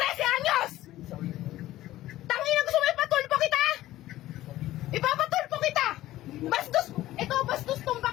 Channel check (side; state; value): right; quieter; 15.3 dB